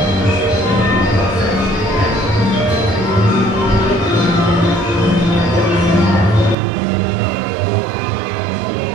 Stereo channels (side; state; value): left; drops out; at 6.6 s